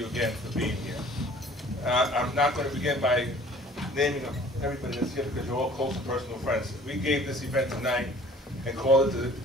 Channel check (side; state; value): both; normal; correlation 0.50